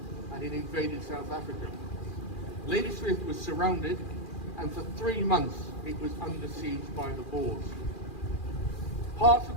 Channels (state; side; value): late; right; 2.4 ms